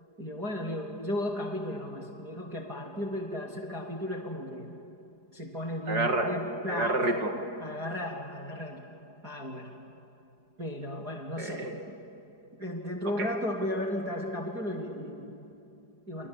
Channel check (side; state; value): left; late; 4.8 ms